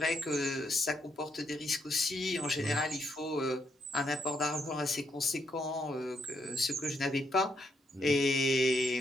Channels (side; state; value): both; normal; correlation 0.76